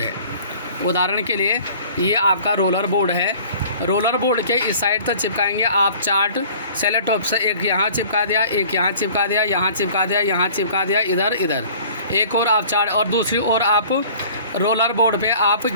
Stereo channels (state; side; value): inverted; both; correlation -0.48